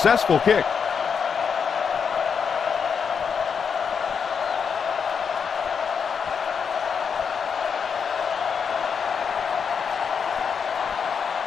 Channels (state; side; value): quieter; right; 6.5 dB